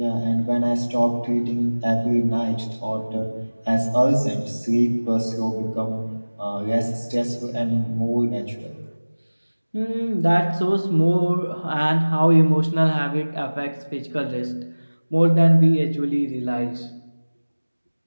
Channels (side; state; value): both; inverted; correlation -1.00